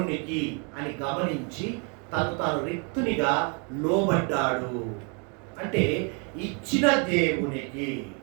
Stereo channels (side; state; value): left; quieter; 36.2 dB